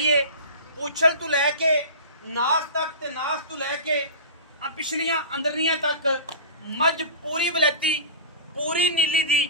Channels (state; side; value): inverted; both; correlation -0.32